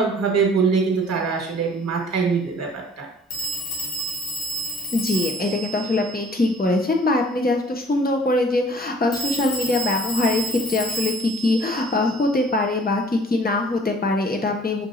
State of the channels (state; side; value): normal; both; correlation 0.53